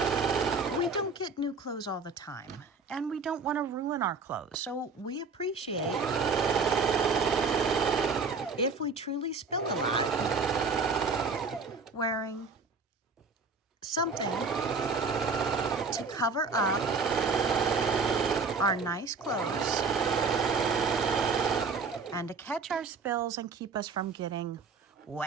don't get new clothes all the time, and we don't want to ruin our clothes. So we appreciate if we truly spill a lot, wearing something to cover up our nice clothes and to catch our spills and keep us from getting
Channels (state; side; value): quieter; left; 4.5 dB